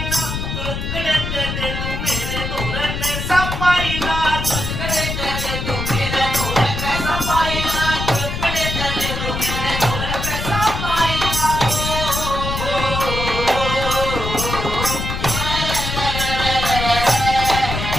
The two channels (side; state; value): left; noise; rumble, 4 dB below the sound